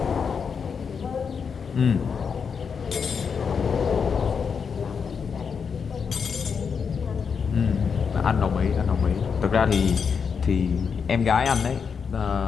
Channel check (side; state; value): right; quieter; 6.2 dB